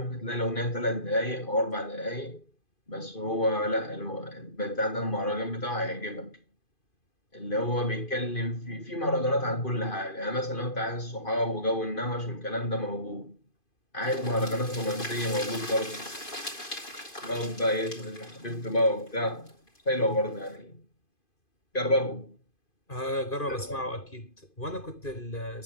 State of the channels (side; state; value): right; late; 2.5 ms